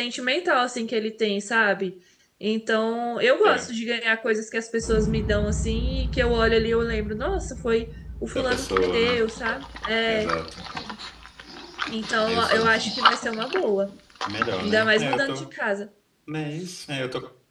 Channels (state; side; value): identical; both; correlation 1.00